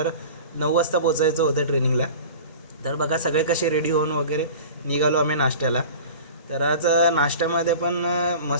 9 वाजता पोचायचं होतं ट्रेनिंगला. तर बघा सगळे कसे रेडी होऊन वगैरे निघालो आम्ही नाश्त्याला. तर आज नाश्त्यामध्ये पण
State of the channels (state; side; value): inverted; both; correlation -0.38